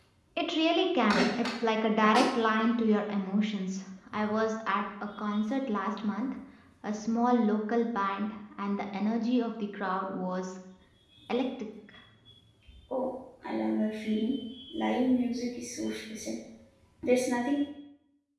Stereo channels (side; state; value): both; identical; correlation 1.00